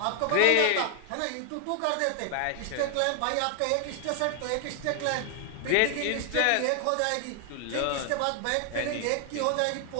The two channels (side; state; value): both; different; correlation 0.00